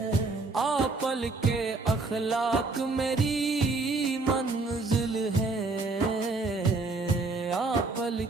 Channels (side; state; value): left; quieter; 3.6 dB